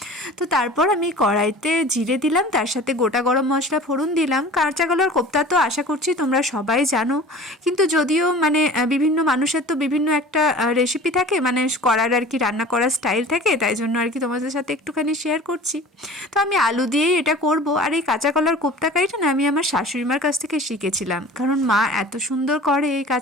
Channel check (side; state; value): both; normal; correlation 0.42